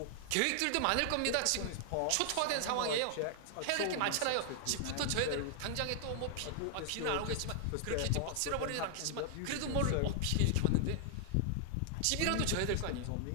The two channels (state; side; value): different; both; correlation 0.00